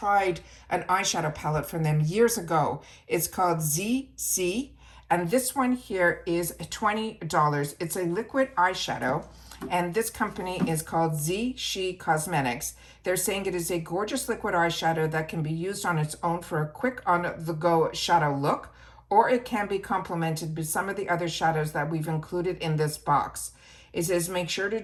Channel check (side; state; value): both; identical; correlation 1.00